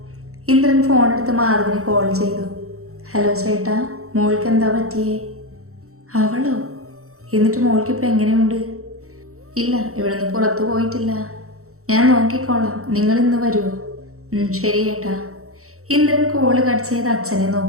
ഇന്ദ്രൻ ഫോണെടുത്ത് മാധവിന് കോൾ ചെയ്തു. ഹലോ ചേട്ടാ, മോൾക്ക് എന്താ പറ്റിയേ? അവളോ? എന്നിട്ട് മോൾക്കിപ്പോൾ എങ്ങനെയുണ്ട്? ഇല്ല, ഇവിടുന്ന് പുറത്തു പോയിട്ടില്ല. ഞാൻ നോക്കിക്കോളാം, നിങ്ങൾ ഇന്ന് വരുമോ? ശരി ഏട്ടാ. ഇന്ദ്രൻ കോള് കട്ട് ചെയ്ത് അച്ഛനെ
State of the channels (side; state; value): left; late; 0.64 ms